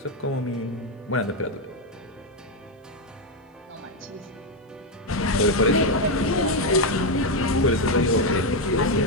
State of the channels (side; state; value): both; normal; correlation 0.05